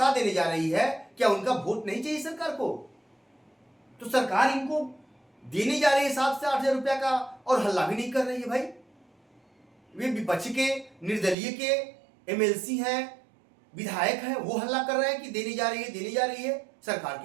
देने जा रही है, क्या उनका वोट नहीं चाहिए सरकार को? तो सरकार इनको देने जा रही है 7 से 8 हजार रुपया का, और हल्ला भी नहीं कर रही है। भाई, वे विपक्ष के, निर्दलीय के एमएलसी हैं, विधायक हैं, वो हल्ला कर रहे हैं कि देने जा रही है। सरकार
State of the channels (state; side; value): drops out; left; at 11.4 s